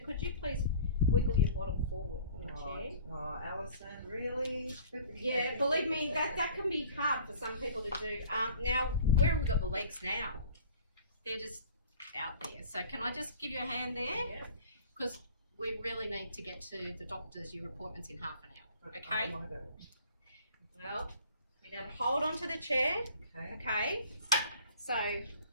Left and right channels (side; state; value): both; inverted; correlation -0.48